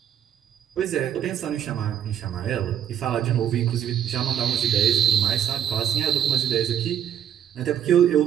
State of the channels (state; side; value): quieter; left; 9.8 dB